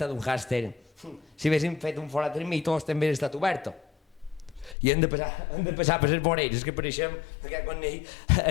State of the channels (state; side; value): drops out; right; at 4.8 s